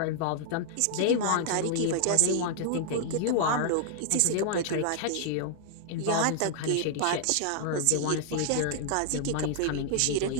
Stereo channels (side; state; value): both; different; correlation 0.00